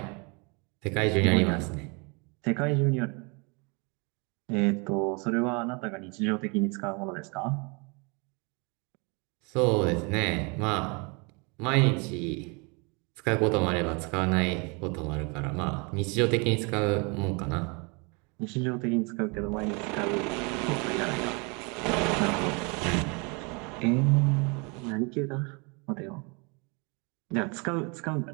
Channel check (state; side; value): quieter; left; 31.3 dB